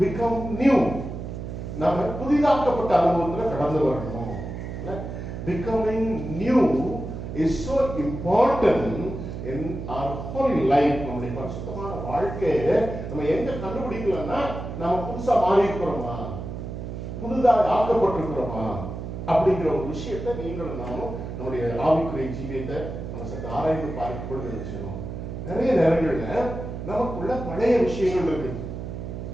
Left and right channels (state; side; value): noise; right; hum, 7 dB below the sound